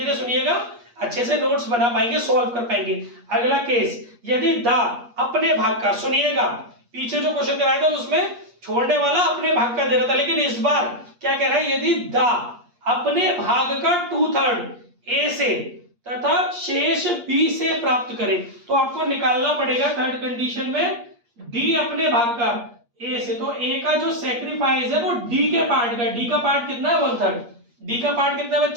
सुनिएगा, अच्छे से नोट्स बना पाएंगे, सॉल्व कर पाएंगे। अगला केस, यदि दा अपने भाग का, सुनिएगा पीछे जो क्वेश्चन कराया था उसमें छोड़ने वाला अपने भाग का दे रहा था, लेकिन इस बार क्या कह रहा है, यदि दा अपने भाग का 2/3 ए से तथा शेष बी से प्राप्त करे, तो आपको निकालना पड़ेगा थर्ड कंडीशन में डी अपने भाग का ए से। तो ए का जो सेक्रीफाइस है वो डी के पार्ट का, डी का पार्ट कितना है 1/3, डी का पार्ट कितना है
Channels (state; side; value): late; left; 8.4 ms